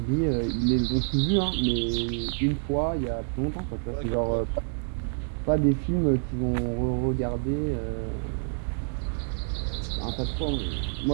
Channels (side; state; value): left; silent; 60 dB below the other